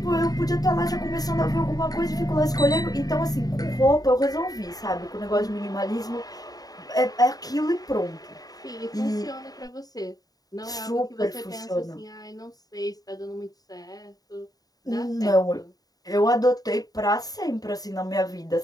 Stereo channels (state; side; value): late; right; 0.18 ms